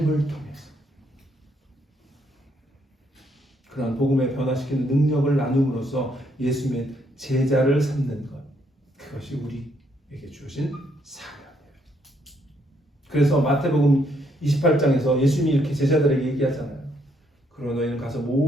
통해서. 그런 복음에 변화시키는 능력을 나눔으로써 예수님의 제자를 삼는 것. 그것이 우리에게 주어진 사명이에요. 그래서 마태복음 28장에서 예수님이 이렇게 제자들에게 얘기하잖아요. 그러나 너희는 가서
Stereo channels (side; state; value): both; normal; correlation 0.72